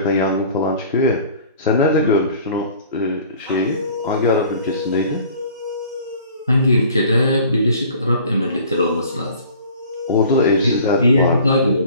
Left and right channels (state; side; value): inverted; both; correlation -0.48